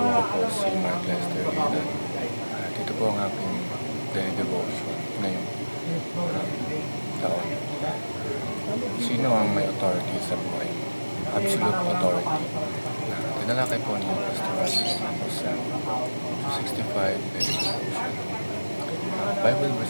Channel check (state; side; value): inverted; both; correlation -1.00